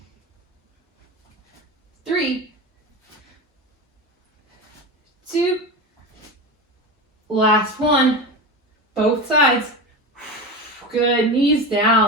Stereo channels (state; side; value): normal; both; correlation 0.24